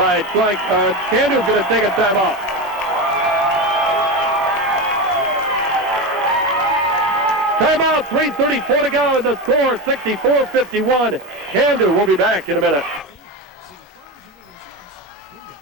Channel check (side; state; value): both; normal; correlation 0.19